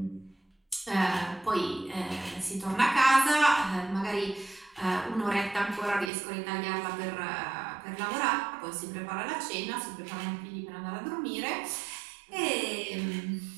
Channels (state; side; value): drops out; left; at 6.1 s